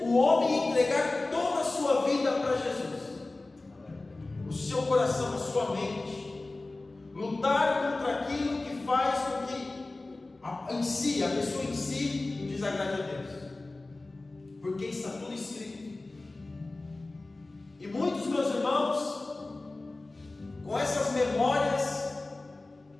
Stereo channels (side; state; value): right; quieter; 3.1 dB